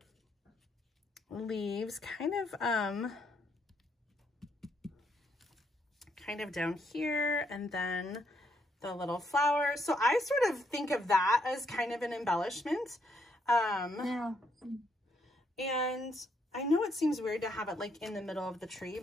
leaves kind of down here, and then the little flower. So I sort of think of that as kind of an embellishment. Yeah. And I know it seems weird to have it like in the middle of the tree,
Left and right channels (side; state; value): both; normal; correlation 0.74